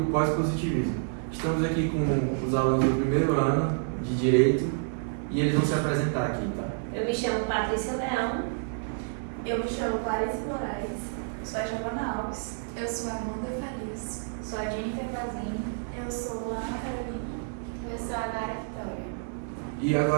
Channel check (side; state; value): left; silent; 59 dB below the other